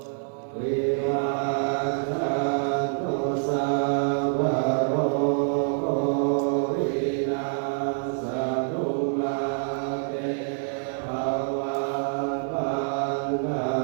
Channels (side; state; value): left; silent; digital silence